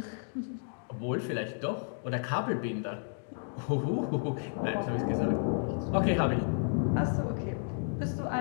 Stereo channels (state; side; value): silent; right; digital silence